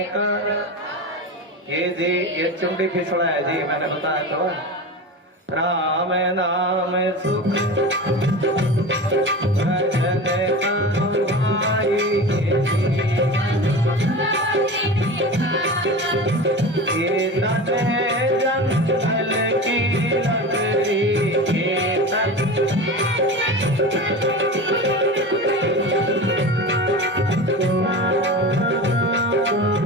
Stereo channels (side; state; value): both; normal; correlation 0.29